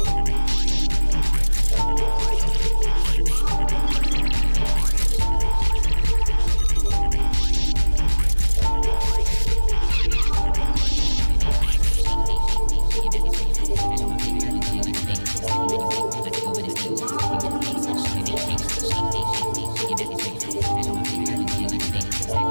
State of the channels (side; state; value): both; inverted; correlation -1.00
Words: Let's go with it.